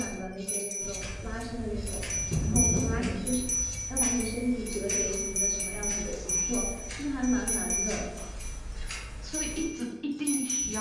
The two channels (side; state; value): both; identical; correlation 1.00